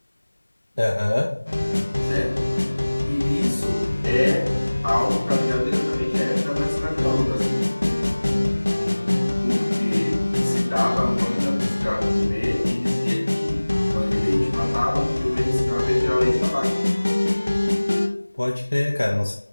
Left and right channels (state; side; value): inverted; both; correlation -1.00